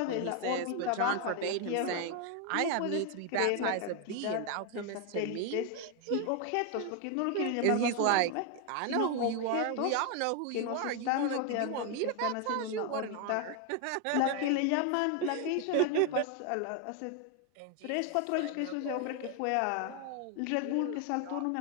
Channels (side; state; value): both; different; correlation 0.01